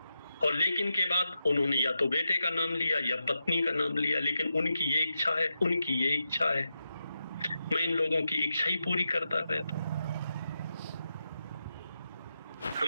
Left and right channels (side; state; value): both; inverted; correlation -0.88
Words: और लेकिन के बाद उन्होंने या तो बेटे का नाम लिया या पत्नी का नाम लिया, लेकिन उनकी ये इच्छा है, उनकी ये इच्छा है। मैं इन लोगों की इच्छा ही पूरी करता रहता।